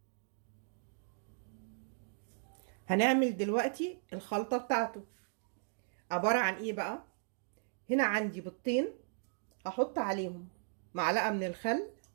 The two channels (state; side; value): silent; left; digital silence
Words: هنعمل دلوقتي الخلطه بتاعته. عباره عن ايه بقى؟ هنا عندي بيضتين، هحط عليهم معلقه من الخل،